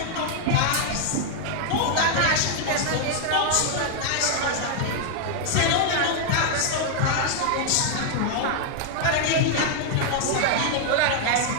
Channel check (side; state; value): both; different; correlation 0.00